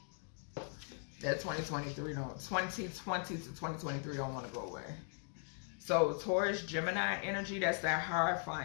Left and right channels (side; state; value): right; silent; 52 dB below the other